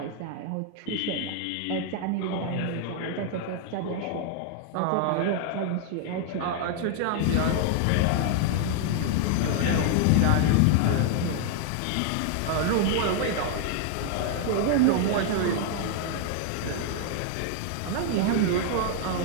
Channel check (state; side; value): different; both; correlation 0.00